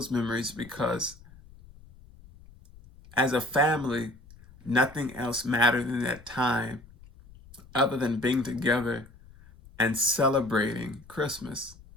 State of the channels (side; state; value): left; noise; rumble, 22 dB below the sound